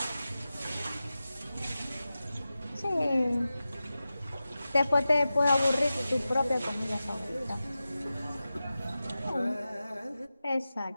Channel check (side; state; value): both; inverted; correlation -0.94